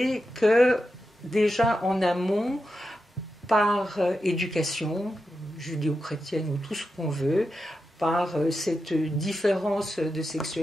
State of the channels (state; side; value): normal; both; correlation 0.89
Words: que déjà en amont, par éducation judéo-chrétienne ou tout ce qu'on veut, par cette différence de